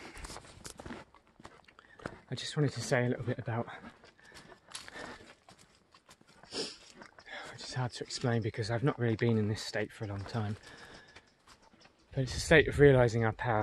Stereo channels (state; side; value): identical; both; correlation 1.00